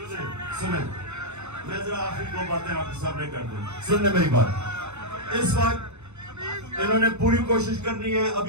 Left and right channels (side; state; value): left; late; 0.82 ms